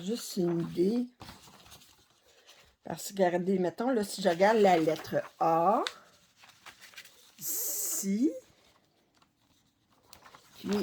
une idée. Parce que, regardez, mettons, là, si je regarde la lettre A, ici, puis,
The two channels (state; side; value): identical; both; correlation 1.00